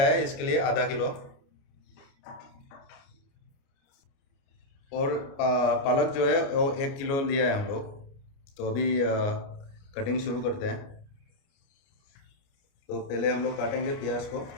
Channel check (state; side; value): late; right; 29 ms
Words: है इसके लिए आधा किलो। और पालक जो है वो 1 किलो लिया है हम लोग। तो अभी कटिंग शुरू करते हैं। तो पहले हम लोग काटेंगे प्याज को।